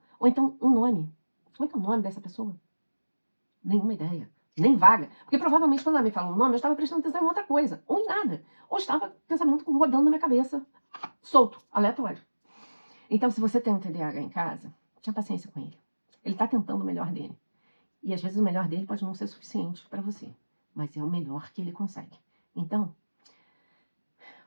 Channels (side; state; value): both; inverted; correlation -1.00